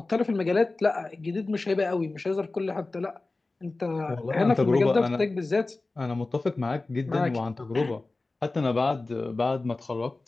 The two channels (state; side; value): quieter; right; 3.3 dB